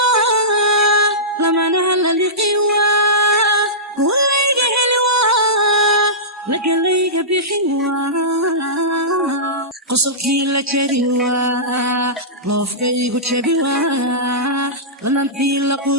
lamanaha laliqiwa duwalayga heliwa lagalayga bixiwa qosolkii la jariwa loofkaygu jabiwa lanantii la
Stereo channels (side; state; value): both; normal; correlation -0.18